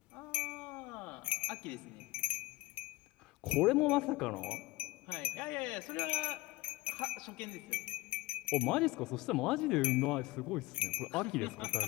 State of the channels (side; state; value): right; quieter; 18.9 dB